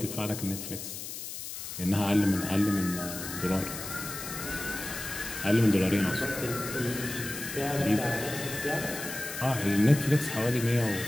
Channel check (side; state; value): left; noise; hiss, 8 dB below the sound